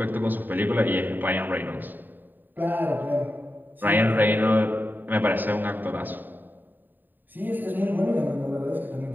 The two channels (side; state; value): left; late; 0.090 ms